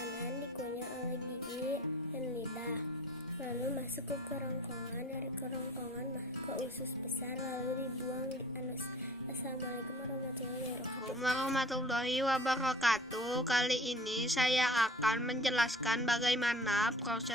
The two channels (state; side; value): normal; both; correlation 0.48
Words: dikunyah oleh gigi dan lidah, lalu masuk ke kerongkongan. Dari kerongkongan masuk ke usus besar, lalu dibuang di anus. Assalamualaikum warahmatullahi wabarakatuh. Kali ini saya akan menjelaskan bagaimana